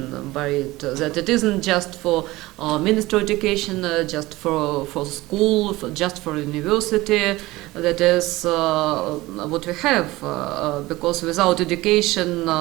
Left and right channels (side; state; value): left; quieter; 19.2 dB